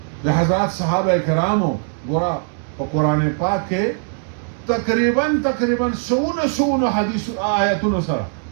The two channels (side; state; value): left; silent; 66 dB below the other